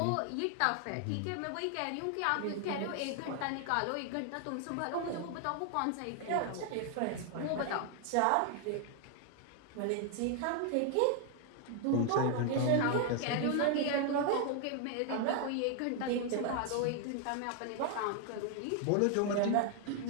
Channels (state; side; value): different; both; correlation 0.00